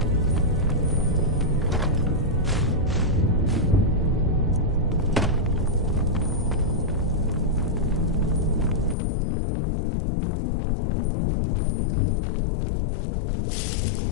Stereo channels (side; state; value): right; drops out; at 9.0 s